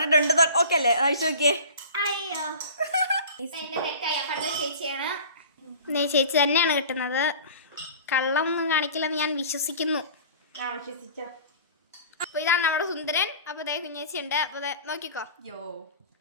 ഓക്കെ അല്ലേ? അയച്ചു നോക്കിയേ. അയ്യോ, ചേച്ചിയാണ്. ചേച്ചി തന്നെയാണ് കിട്ടുന്നത്. കള്ളം ഒന്നും കാണിക്കില്ലെന്ന് ഞാൻ വിശ്വസിക്കുന്നു. അപ്പൊ ഇതാണ് നമ്മുടെ സുന്ദരൻ. അപ്പൊ ദേ കുഞ്ഞേച്ചി ഉണ്ട്. അപ്പൊ നോക്കിക്കോ.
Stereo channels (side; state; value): both; inverted; correlation -0.41